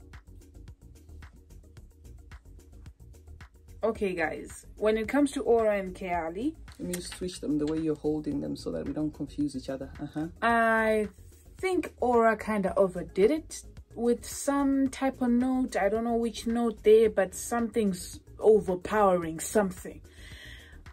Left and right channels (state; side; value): identical; both; correlation 1.00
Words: Okay, guys, when it comes to Aura and Keali, let me switch them the way you're holding them so that we don't confuse each other. I think Aura kind of overdid it with some type of note. I don't know which note there, but something's overpowering something.